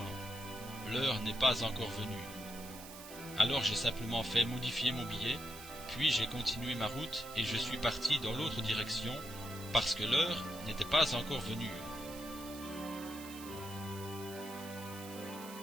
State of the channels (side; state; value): right; noise; hiss, 14 dB below the sound